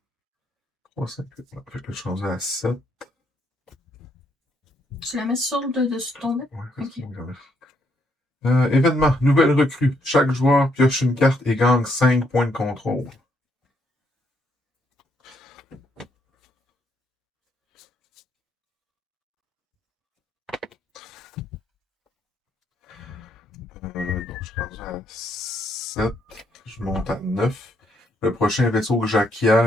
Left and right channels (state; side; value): normal; both; correlation 0.73